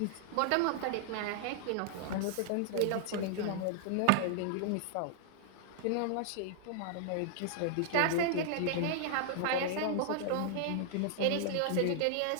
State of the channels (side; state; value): both; different; correlation 0.00